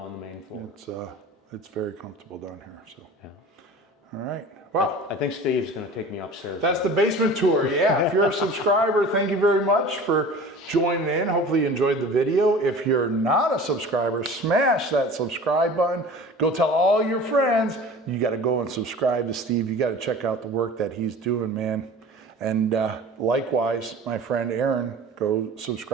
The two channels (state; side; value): normal; both; correlation 0.40